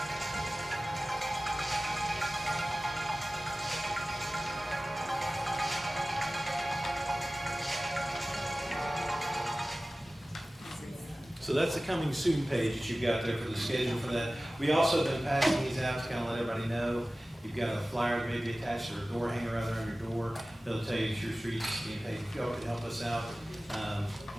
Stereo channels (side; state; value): both; normal; correlation 0.97